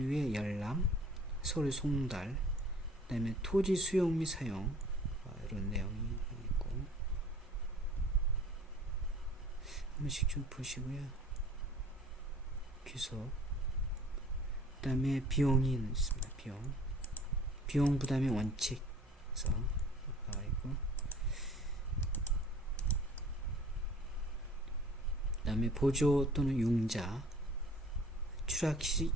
열람, 서류 송달, 그 다음에 토지 수용 및 사용, 이런 내용이 있고, 한 번씩 좀 보시고요. 귀속, 그 다음에 비용이 있습니다. 비용 부담의 원칙에서 나와 있고, 그 다음에 보조 또는 융자, 추락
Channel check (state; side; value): normal; both; correlation 0.51